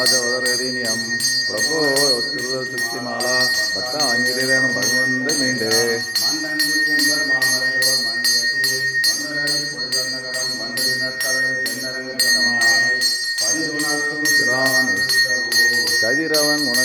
பிரபோ திருமாலா பட்டாங்கிரேனும் பகவந்த மீண்டே கதிரவன்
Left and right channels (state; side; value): identical; both; correlation 1.00